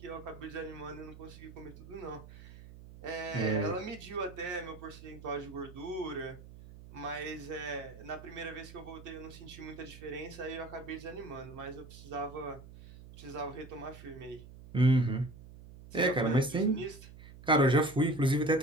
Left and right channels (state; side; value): noise; right; hum, 17 dB below the sound